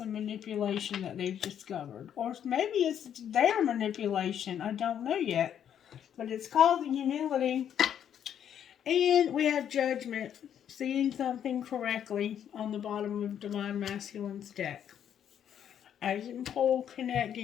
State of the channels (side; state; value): right; quieter; 9.3 dB